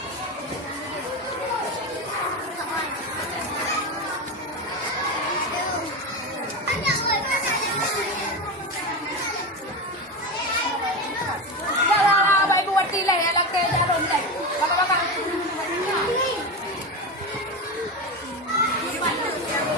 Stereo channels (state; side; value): normal; both; correlation 0.19